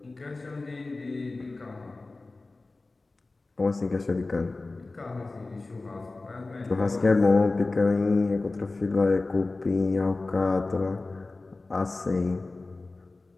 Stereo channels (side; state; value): right; quieter; 3.3 dB